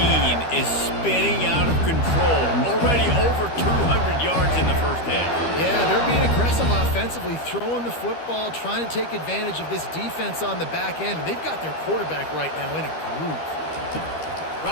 is spinning out of control. Already over 200 yards in the first half. Yeah, they're being aggressive offensively, throwing the football, trying to take advantage of this defense on the back end. And they've got their quarterback right now in a groove.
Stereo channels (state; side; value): late; right; 13 ms